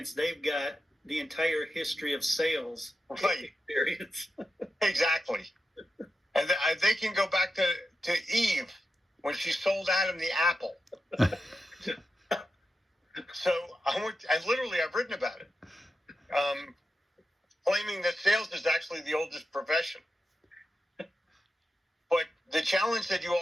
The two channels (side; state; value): both; normal; correlation 0.90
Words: They've got the entire history of sales experience. Exactly. And they can go back to Eve when she sold Adam the apple. So I've written about it, claiming that sales is actually the oldest profession. But the challenge that you